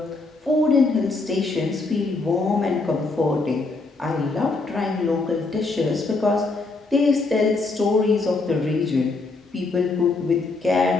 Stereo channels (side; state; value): right; quieter; 3.6 dB